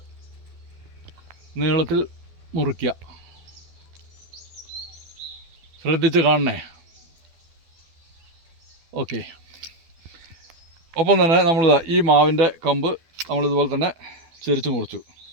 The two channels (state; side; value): late; left; 12 ms